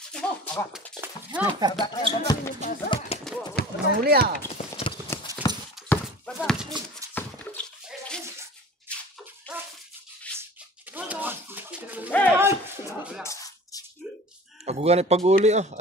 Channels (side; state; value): both; normal; correlation 0.41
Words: Nahuli ah. Baba. Pag pag-uli